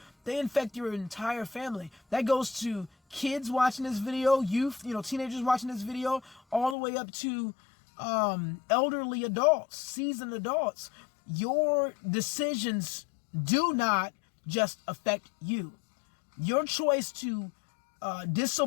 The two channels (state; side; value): drops out; right; at 6.8 s